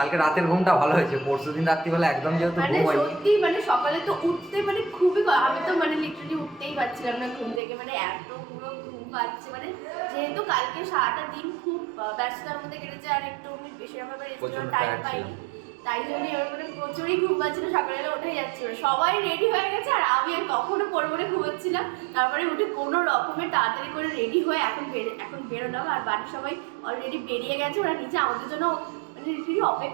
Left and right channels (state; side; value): drops out; left; at 7.6 s